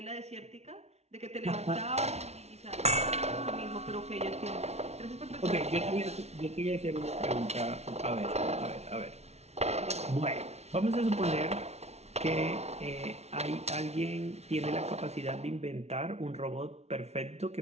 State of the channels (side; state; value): left; late; 0.31 ms